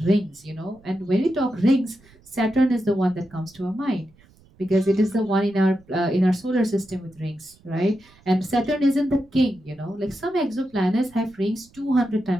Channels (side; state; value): right; noise; rumble, 28 dB below the sound